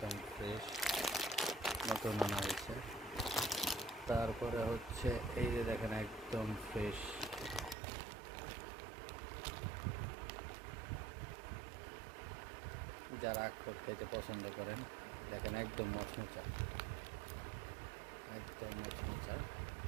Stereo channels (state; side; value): drops out; left; at 7.8 s